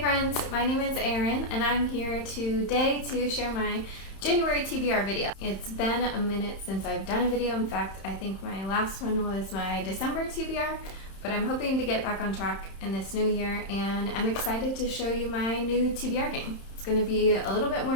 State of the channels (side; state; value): right; late; 31 ms